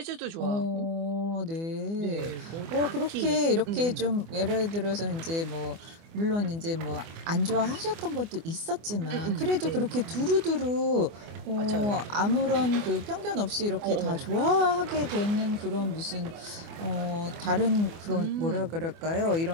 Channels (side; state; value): left; late; 24 ms